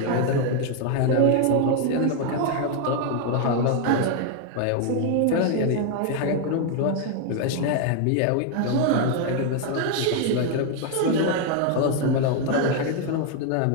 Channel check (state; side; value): different; both; correlation 0.01